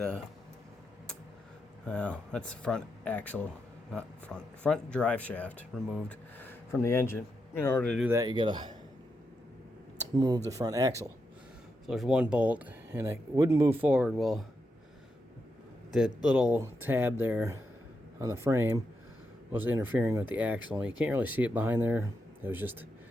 the front axle, not front drive shaft removed from the engine. In order to do that, you got to move the front axle. So there's one bolt, and it wouldn't move forward. Well, that little tab there on the frame was interfering with the axle. You can't really see it behind there. It was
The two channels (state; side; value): normal; both; correlation 0.84